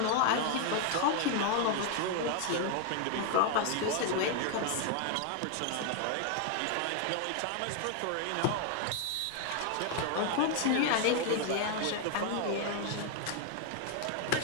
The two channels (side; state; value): both; different; correlation 0.00